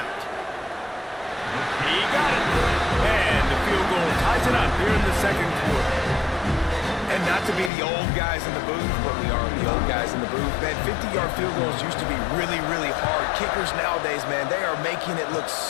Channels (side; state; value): right; drops out; at 7.7 s